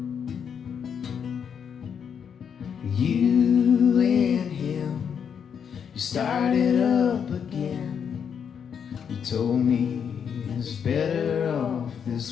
You and him, you started up again. You told me it's better off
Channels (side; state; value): right; quieter; 7.5 dB